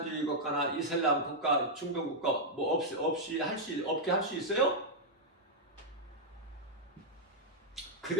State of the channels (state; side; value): normal; both; correlation -0.05